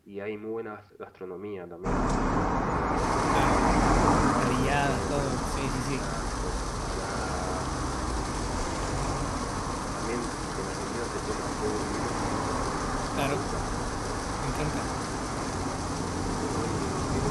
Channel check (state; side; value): identical; both; correlation 1.00